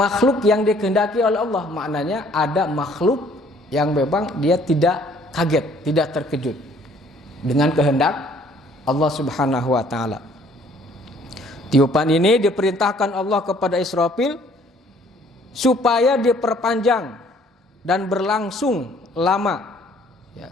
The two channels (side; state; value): both; normal; correlation 0.59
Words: yang dikehendaki oleh Allah. Maknanya ada makhluk yang memang dia tidak kaget, tidak terkejut dengan kehendak Allah Subhanahu wa taala. Tiupan ini diperintahkan Allah kepada Israfil supaya diperpanjang dan berlangsung lama. Ya,